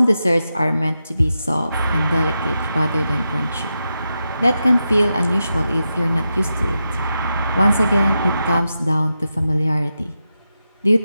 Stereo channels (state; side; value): inverted; both; correlation -0.88